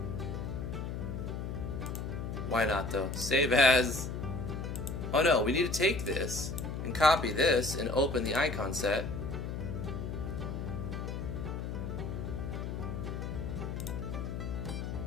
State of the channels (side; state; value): left; noise; hum, 4 dB below the sound